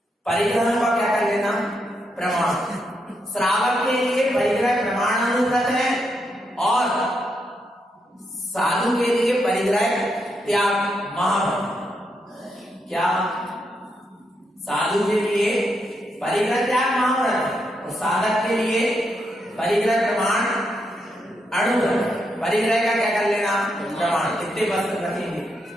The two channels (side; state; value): both; normal; correlation 0.81